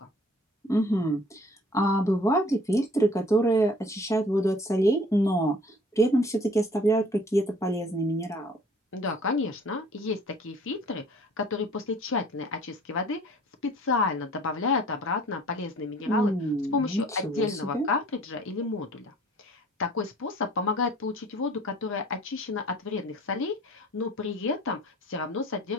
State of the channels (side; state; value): both; normal; correlation 0.52